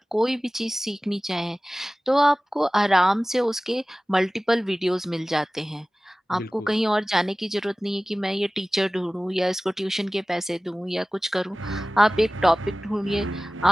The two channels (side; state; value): both; normal; correlation 0.97